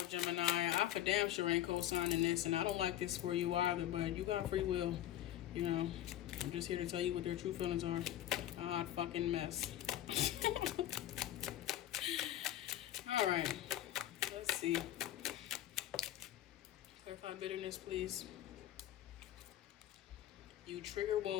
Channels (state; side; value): quieter; right; 12.6 dB